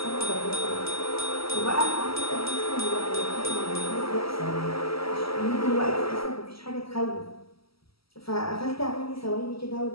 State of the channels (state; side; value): late; right; 0.75 ms